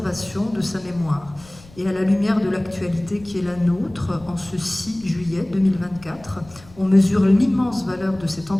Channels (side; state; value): left; noise; rumble, 23 dB below the sound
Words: de sa mémoire. Et à la lumière de l'actualité qui est la nôtre, en ce 6 juillet 2024, on mesure l'immense valeur de cette